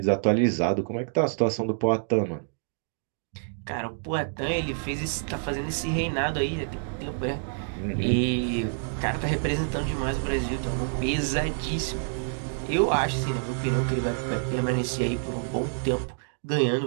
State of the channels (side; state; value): left; silent; digital silence